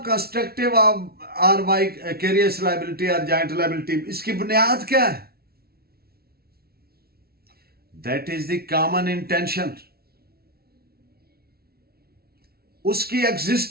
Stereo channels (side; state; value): left; late; 0.45 ms